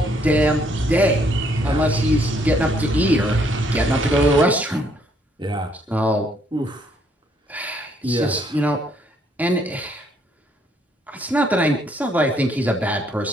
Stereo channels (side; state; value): both; normal; correlation 0.68